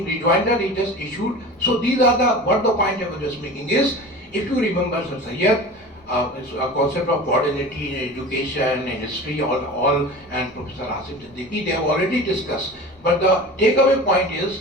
rejoinder he just issued. So these are what the point I was just making is, if you remember Sir Syed, this concept of modernity in education and history, all and Professor Asim Siddiqui, they have already discussed. But the takeaway point is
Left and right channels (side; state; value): both; normal; correlation 0.35